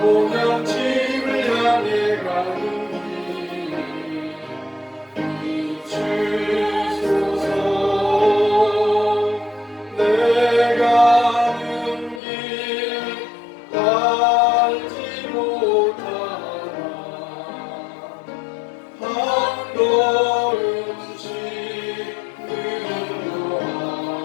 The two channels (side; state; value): right; drops out; at 12.2 s